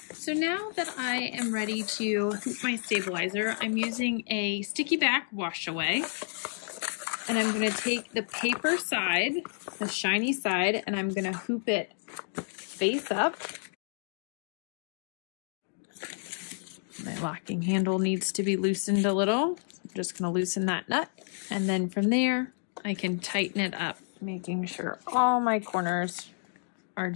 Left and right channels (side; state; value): right; silent; digital silence